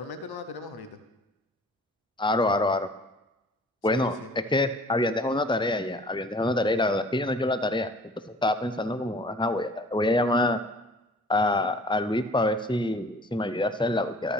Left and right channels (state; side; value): normal; both; correlation 0.49